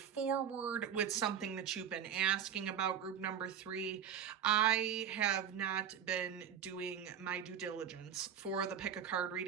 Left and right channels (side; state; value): left; quieter; 8.7 dB